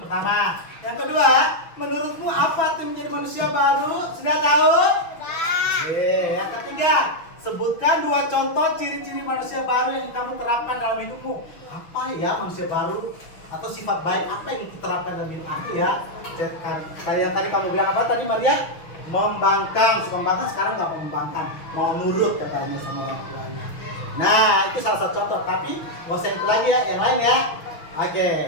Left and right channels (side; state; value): right; late; 6.2 ms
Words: pertama. Yang kedua, menurutmu apa tuh menjadi manusia baru? Sudah tahu? Yang ketiga, sebutkan 2 contoh ciri-ciri manusia baru yang kamu terapkan dalam hidupmu. Apa ya manusia baru? Atau sifat baik apa yang diterapkan dalam hidup aku ya? Kalian tadi kamu bilang apa tadi Maria? Membangkang, suka membangkang, sekarang nggak mau membangkang, mau nurut katanya sama orang tuanya. Nah, itu salah satu contoh, tapi nggak usah itu lagi ya, yang lain ya.